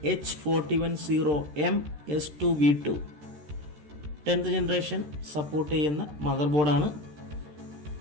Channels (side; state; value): left; late; 13 ms